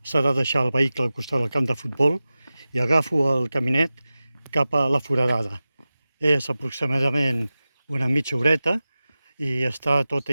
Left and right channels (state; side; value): inverted; both; correlation -0.95